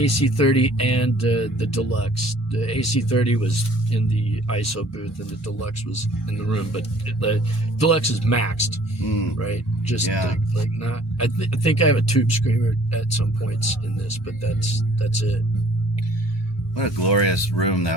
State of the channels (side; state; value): both; normal; correlation 0.55